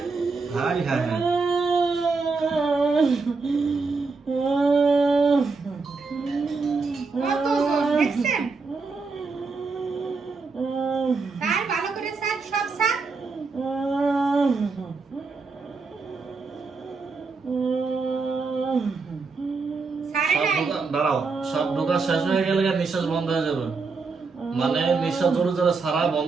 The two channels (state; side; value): quieter; left; 4.4 dB